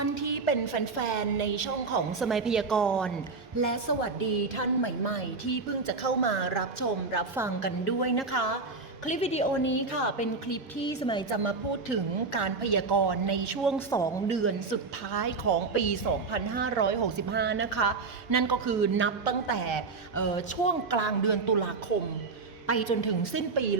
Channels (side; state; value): left; quieter; 4.2 dB